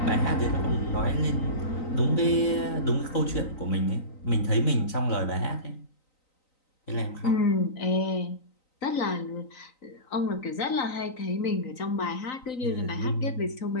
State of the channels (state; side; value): late; right; 3.9 ms